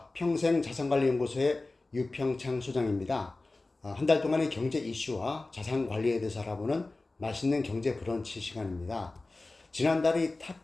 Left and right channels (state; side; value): quieter; right; 3.2 dB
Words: 평생자산관리연구소의 유평창 소장입니다. 한 달 동안의 경제 이슈와 자산관리에 대해서 알아보는 맛있는 경제 브런치 시간입니다. 지난달에 이